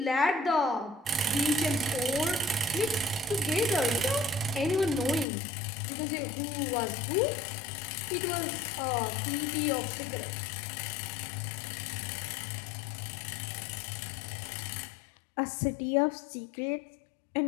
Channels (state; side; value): drops out; right; at 5.2 s